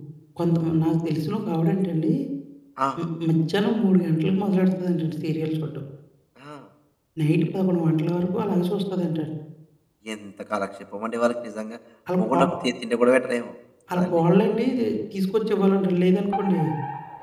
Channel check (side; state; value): both; identical; correlation 1.00